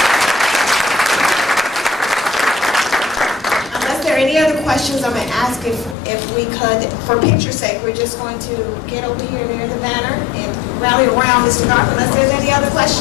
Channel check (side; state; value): right; drops out; at 6.0 s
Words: Any other questions? I'm going to ask if we could, for picture's sake, we're just going to get over here near the banner and rally around Mr. Garth unless there's any other